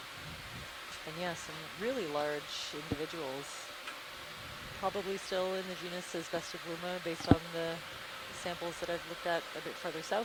And yeah, some really large individuals. Probably still in the genus Asbestifluma based on the samples that I've looked at a bit further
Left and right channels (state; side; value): identical; both; correlation 1.00